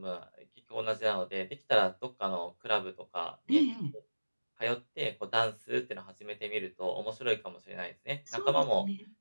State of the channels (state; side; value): inverted; both; correlation -1.00